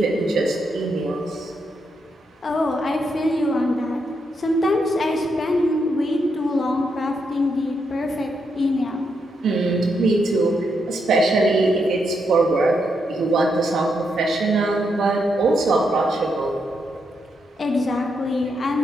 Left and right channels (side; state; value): both; normal; correlation 0.80